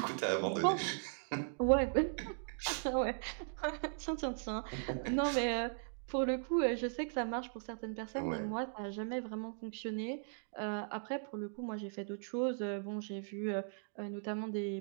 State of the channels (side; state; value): left; silent; digital silence